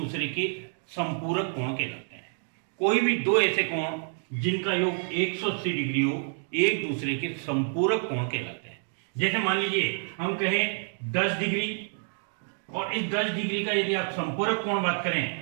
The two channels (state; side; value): silent; left; 59 dB below the other